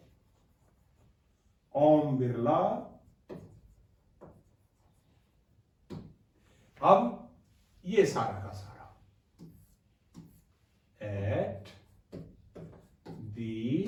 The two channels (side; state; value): both; identical; correlation 1.00